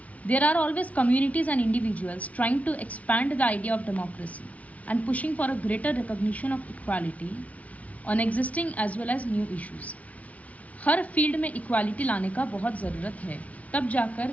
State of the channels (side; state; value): right; late; 0.068 ms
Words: There are always communities and individuals trying to expand the idea of democracy and pushing for a greater recognition of equality on existing as well as new issues. हर फील्ड में इक्वालिटी लाने का बहुत ज़रूरत है, तब जाकर